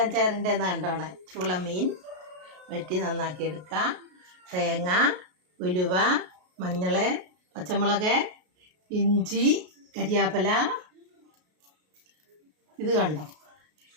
ചേരേണ്ടതെന്ന് കണ്ടോണേ. ചൂള മീൻ വെട്ടി നന്നാക്കി എടുക്കാം. തേങ്ങ, ഉലുവ, മഞ്ഞൾ, പച്ചമുളക്, ഇഞ്ചി, കരിയാപ്പില. ഇത് കണ്ടോ,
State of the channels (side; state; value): left; late; 33 ms